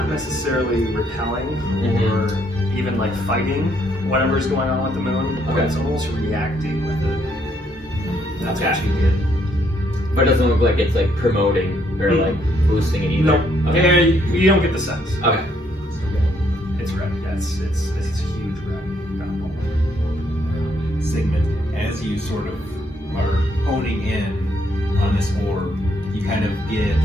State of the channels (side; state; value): both; normal; correlation 0.71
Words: necessarily repelling or even like fighting whatever's going on with the moon, but Okay. it's almost reacting with it. That's what Okay. you get. But it doesn't look like it's like promoting or like boosting it either. No, Okay. yeah, you don't get the sense. Okay. It's red. Yeah, it's huge red. Sigmund, as you sort of are honing in on this orb, you kind of get